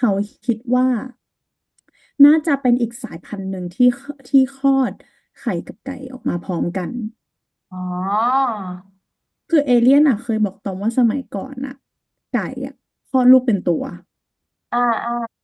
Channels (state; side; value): identical; both; correlation 1.00